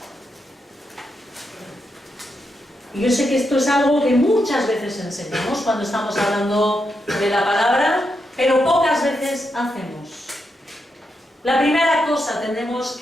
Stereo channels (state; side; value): normal; both; correlation 0.84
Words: Y yo sé que esto es algo que muchas veces enseñamos cuando estamos hablando de la palabra, pero pocas veces hacemos. La primera cosa, tenemos